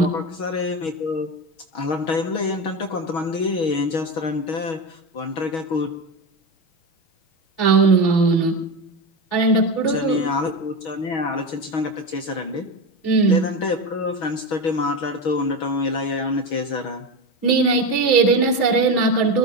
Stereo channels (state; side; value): late; right; 6.2 ms